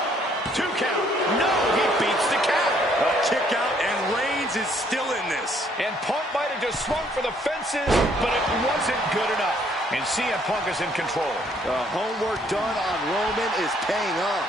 2 count. No, he beats the count. A kick out, and Reigns is still in this. And Punk might have just swung for the fences, but it wasn't good enough. And CM Punk is in control. The homework done on Roman is paying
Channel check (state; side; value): normal; both; correlation 0.65